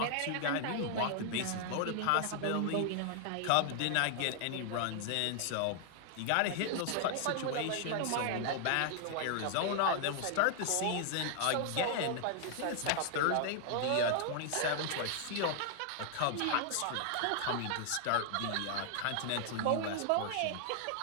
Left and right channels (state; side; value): different; both; correlation 0.00